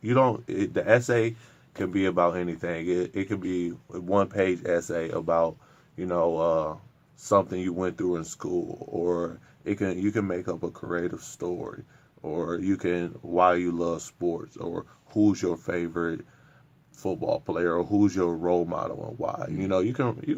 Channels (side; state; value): both; identical; correlation 1.00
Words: don't the essay can be about anything. It could be a 1-page essay about something you went through in school, or you can make up a creative story, or you can why you love sports, or who's your favorite football player, or who's your role model and why. You can